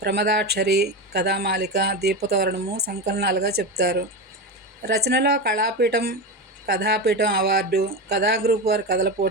కథామాలిక, దీపతోరణము సంకలనాలుగా చెప్తారు. రచనలో కళాపీఠం, కథాపీఠం అవార్డు, కథా గ్రూప్ వారి కథల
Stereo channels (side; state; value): both; normal; correlation 0.18